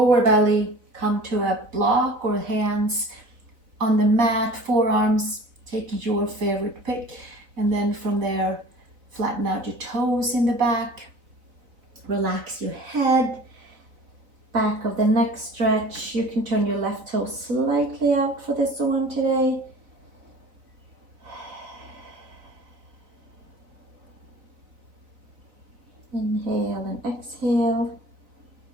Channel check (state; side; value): late; left; 4.0 ms